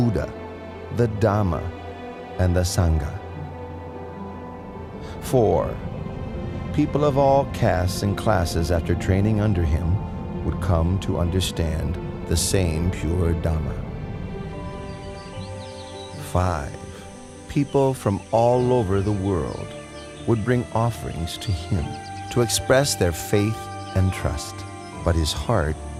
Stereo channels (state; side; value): identical; both; correlation 1.00